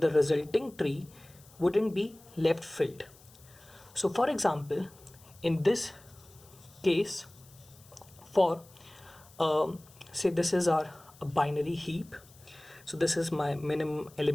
resulting tree wouldn't be left filled. So for example, in this case, for say this is our binary heap, so this is my minimum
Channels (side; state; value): left; noise; hiss, 25 dB below the sound